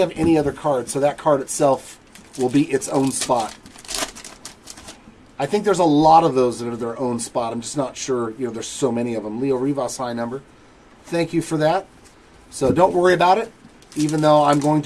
any other cards, so that card itself will be its own spot. I think there's a lot of those that are their own spot. I'm just not sure, there's so many of them. Leo Rivas, high number. Thank you for that. So don't worry about it. Even though I'm going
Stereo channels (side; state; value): both; identical; correlation 1.00